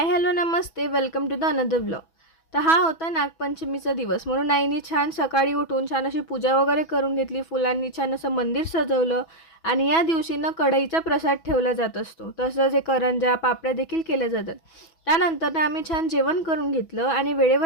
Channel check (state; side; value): late; right; 6.1 ms